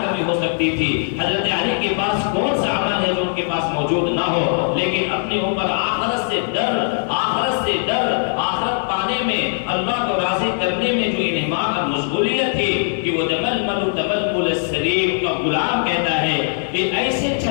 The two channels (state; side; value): silent; right; 66 dB below the other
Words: کمی ہو سکتی تھی؟ حضرت علی کے پاس کون سا عمل ہے جو ان کے پاس موجود نہ ہو؟ لیکن اپنے اوپر آخرت سے ڈر، آخرت سے ڈر، آخرت پانے میں، اللہ کو راضی کرنے میں جو انہماک اور مشغولیت تھی کہ وہ تململ تململ السلیم کا غلام کہتا ہے کہ ایسے